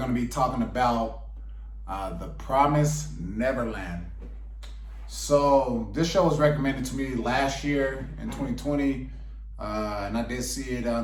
be talking about The Promised Neverland. So this show was recommended to me last year in 2020, and I did see it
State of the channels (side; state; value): both; identical; correlation 1.00